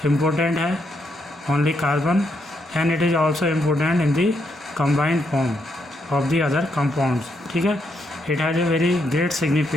important है, only carbon, and it is also important in the combined form of the other compounds. ठीक है, it has a very great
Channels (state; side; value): normal; both; correlation 0.78